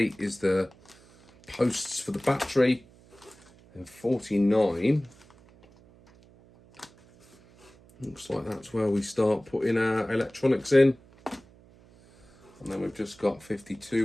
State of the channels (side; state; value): right; noise; hum, 26 dB below the sound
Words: is the posts for the battery. And 49, looks like that's where we start putting our electronics in. And then we've just got